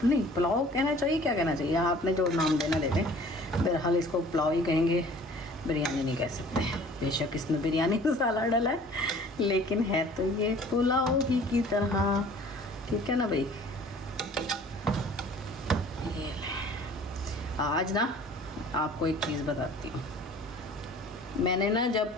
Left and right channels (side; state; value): both; normal; correlation 0.50